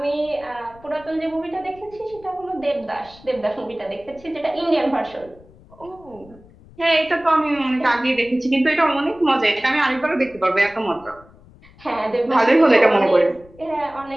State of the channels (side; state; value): left; noise; rumble, 24 dB below the sound